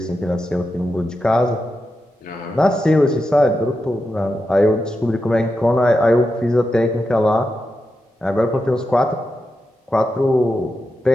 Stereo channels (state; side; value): normal; both; correlation 0.88